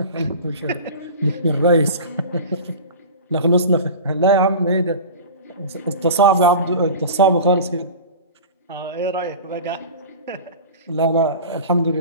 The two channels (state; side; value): inverted; both; correlation -0.34